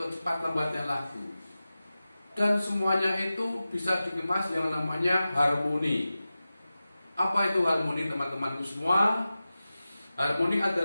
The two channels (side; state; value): both; inverted; correlation -0.95